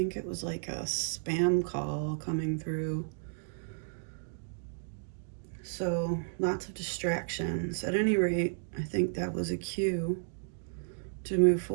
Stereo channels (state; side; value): silent; left; digital silence